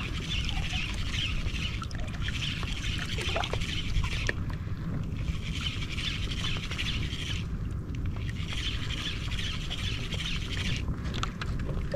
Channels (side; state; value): both; identical; correlation 1.00